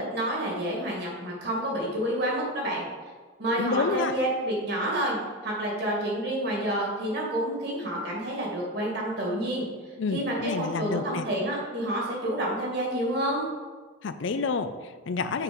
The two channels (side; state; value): both; normal; correlation 0.16